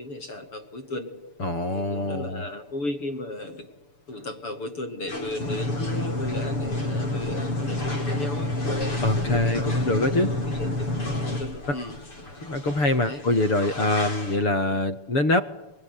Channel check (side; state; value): right; late; 6.9 ms